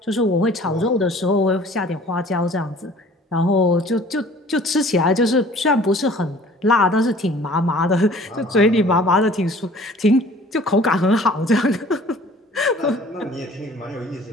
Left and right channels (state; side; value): normal; both; correlation 0.50